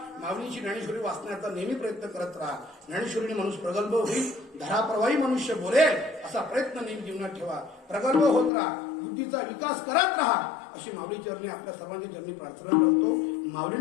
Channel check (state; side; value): drops out; right; at 8.5 s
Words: माऊलीची ज्ञानेश्वरी वाचण्याचा नेहमी प्रयत्न करत राहा. ज्ञानेश्वरीने माणूस प्रगल्भ होईल, धराप्रवाही मनुष्य बोलेल असा प्रयत्न नेहमी जीवनात ठेवा. प्रगल्भ होत राहा, बुद्धीचा विकास करत राहा अशी माऊली चरणी आपल्या सर्वांच्या चरणी प्रार्थना करतो.